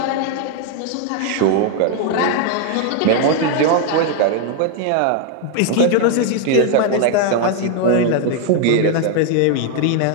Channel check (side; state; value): both; different; correlation 0.01